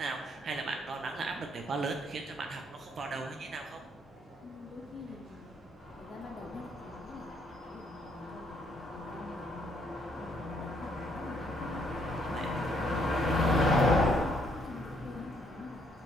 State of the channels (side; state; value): both; normal; correlation 0.70